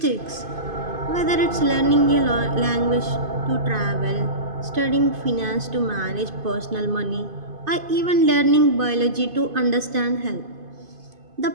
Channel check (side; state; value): left; late; 2.5 ms